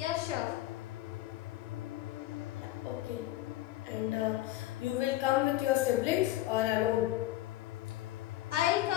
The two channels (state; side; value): quieter; right; 15.6 dB